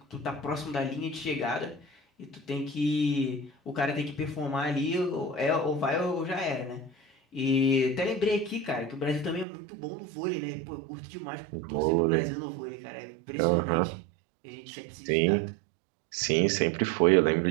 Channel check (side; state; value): left; drops out; at 9.5 s